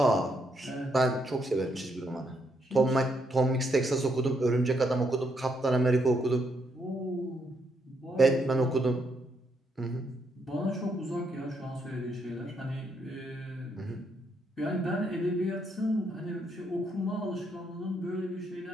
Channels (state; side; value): normal; both; correlation 0.76